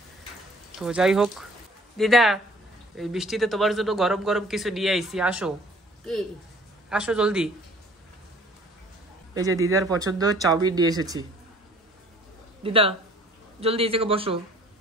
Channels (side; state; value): both; normal; correlation 0.54